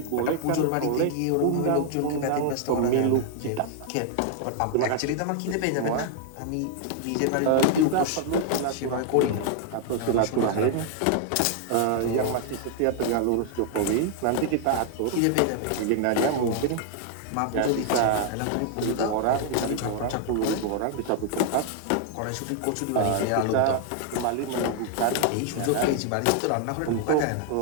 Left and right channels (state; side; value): different; both; correlation 0.00